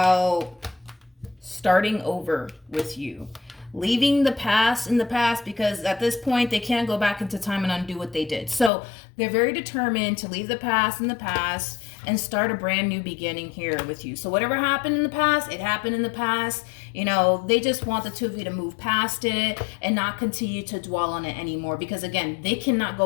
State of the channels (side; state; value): right; drops out; at 8.7 s